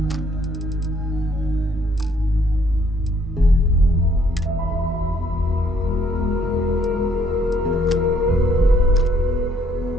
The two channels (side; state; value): both; normal; correlation 0.66